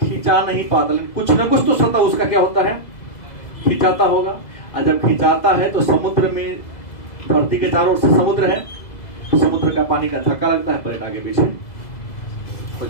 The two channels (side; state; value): right; late; 2.0 ms